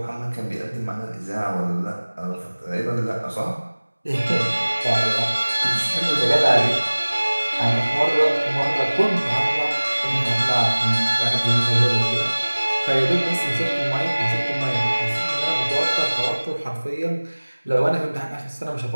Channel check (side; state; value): both; inverted; correlation -1.00